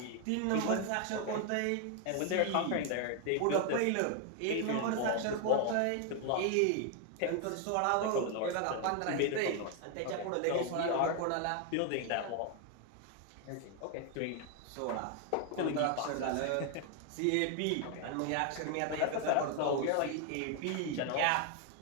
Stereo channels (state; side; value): different; both; correlation 0.00